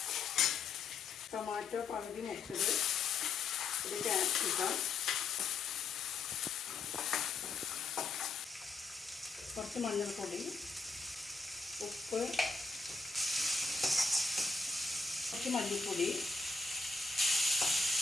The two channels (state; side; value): quieter; right; 4.3 dB